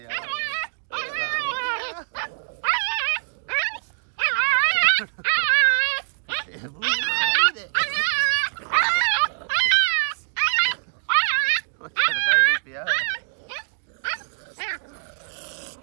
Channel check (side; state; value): left; silent; digital silence